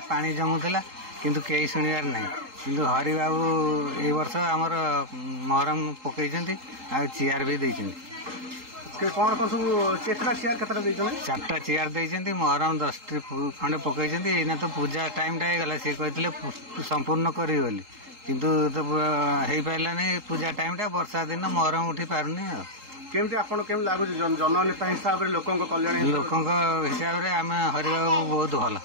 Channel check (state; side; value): late; left; 3.8 ms